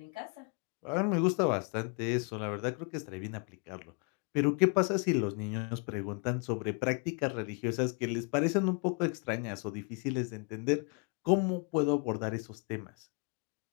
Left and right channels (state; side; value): quieter; right; 36.2 dB